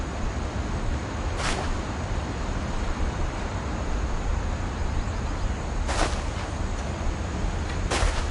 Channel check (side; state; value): both; identical; correlation 1.00